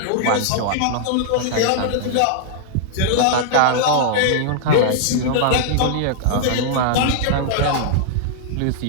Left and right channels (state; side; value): different; both; correlation -0.01